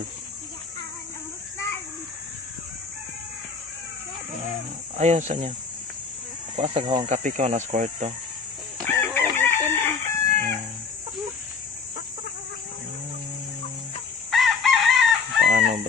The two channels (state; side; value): quieter; right; 5.1 dB